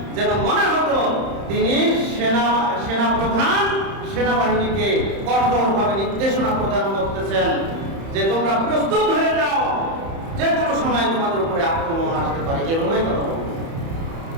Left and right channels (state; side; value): late; left; 30 ms